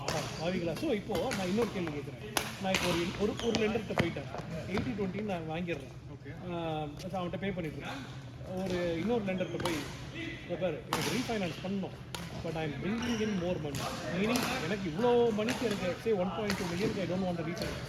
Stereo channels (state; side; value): identical; both; correlation 1.00